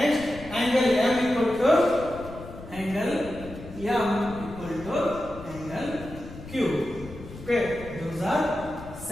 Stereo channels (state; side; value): noise; left; rumble, 15 dB below the sound